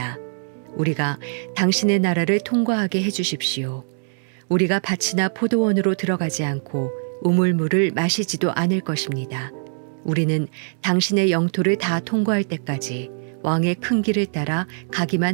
우리가 당신의 나라를 통과하게 해주십시오. 우리가 밭이나 포도원으로 들어가지 않고 우물물을 마시지도 않을 것입니다. 우리는 당신의 영토를 다 통과할 때까지 왕의 큰 길을 따라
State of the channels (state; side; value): silent; left; digital silence